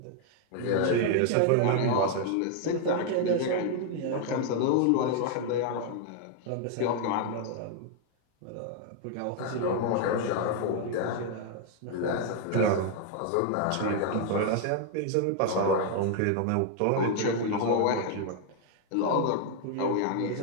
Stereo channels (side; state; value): both; different; correlation 0.00